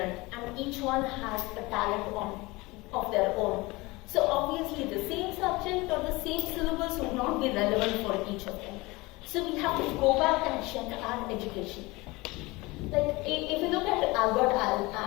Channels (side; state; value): right; quieter; 22.7 dB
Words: and each one has a talent of their own. So obviously the same subject or the same syllabus would not be relevant for each of them. So we have to go back and check our education. If you look at Albert